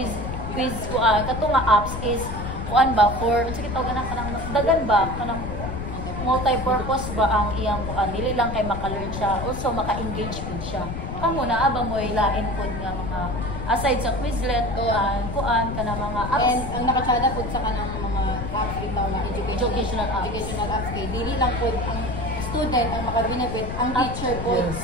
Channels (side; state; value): left; noise; rumble, 6 dB below the sound